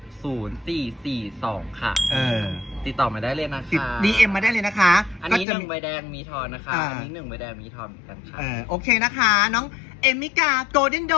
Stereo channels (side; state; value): right; drops out; at 5.5 s